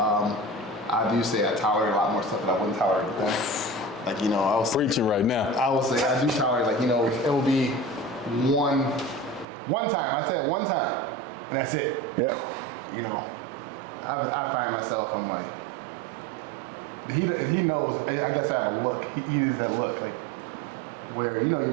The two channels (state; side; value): drops out; left; at 9.5 s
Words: do say I tolerate a lot more stuff that I wouldn't tolerate with them. Like I was Preaching right now. I will say I do tolerate it will be one time. I said one time, and that's it. Yeah. I find myself, I'm like, he knows. I guess I have a look. He uses that look like. Where your